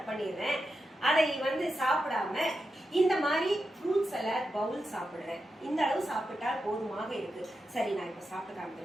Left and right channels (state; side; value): normal; both; correlation 0.89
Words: பண்ணிடுறேன். அதை சாப்பிடாம இந்த மாதிரி ஃப்ரூட் சலாட் பவுல் சாப்பிடுறேன். இந்த அளவு சாப்பிட்டா போதுமாக இருக்கு. சரி, நான் இப்ப சாப்பிட்டு